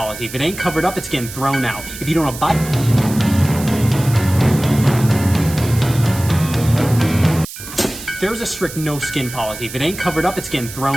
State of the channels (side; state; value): right; noise; hiss, 12 dB below the sound